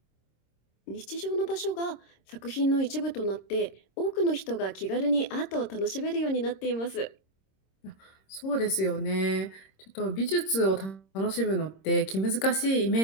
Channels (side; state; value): right; late; 26 ms